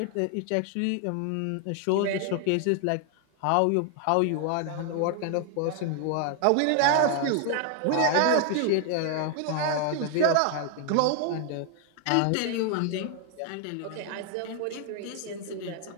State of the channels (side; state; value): both; different; correlation 0.00